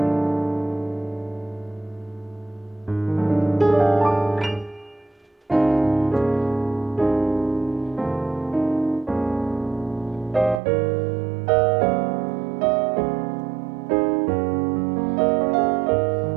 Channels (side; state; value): left; drops out; at 10.6 s